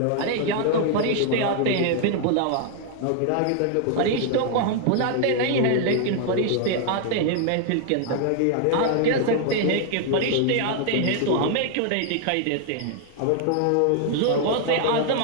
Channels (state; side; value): different; both; correlation 0.00